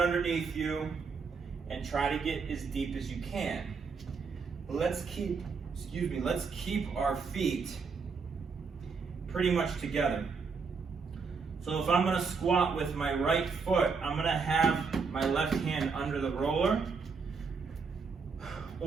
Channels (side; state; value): left; quieter; 5.1 dB